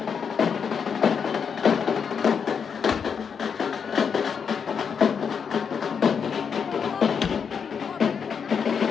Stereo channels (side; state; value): right; quieter; 6.6 dB